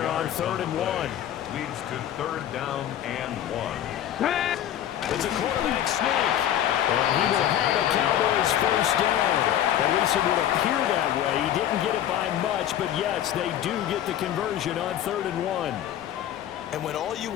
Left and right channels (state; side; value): quieter; right; 11.3 dB